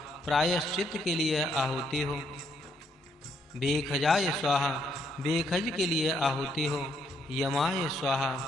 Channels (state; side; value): normal; both; correlation 0.73